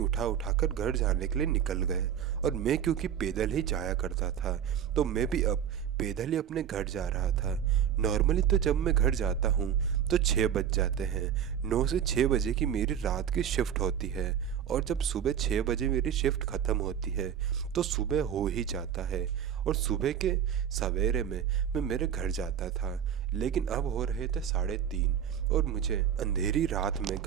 घर जाने के लिए निकल गए। और मैं क्योंकि पैदल ही जाया करता था तो मैं भी अब पैदल ही अपने घर जा रहा था। नॉर्मली तो जब मैं घर जाता हूँ तो 6 बज जाते हैं। 9 से 6 बजे की मेरी रात की शिफ्ट होती है और जब सुबह 6 बजे मेरी शिफ्ट ख़त्म होती है तो सुबह हो ही जाता है। और सुबह के सवेरे में मैं मेरे घर जाता था, लेकिन अब हो रहे थे 3:30 और मुझे अंधेरी रात में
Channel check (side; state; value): left; quieter; 9.1 dB